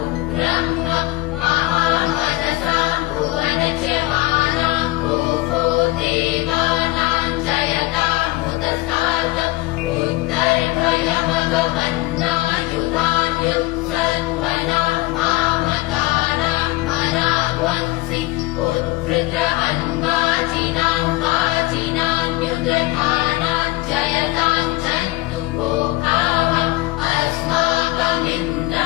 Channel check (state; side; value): quieter; right; 20.1 dB